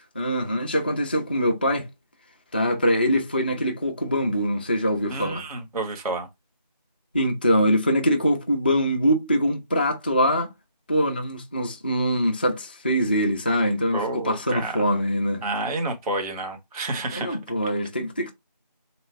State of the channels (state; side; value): inverted; both; correlation -0.69